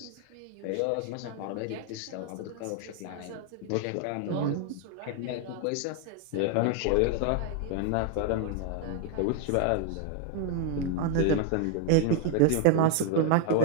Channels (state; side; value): different; both; correlation 0.01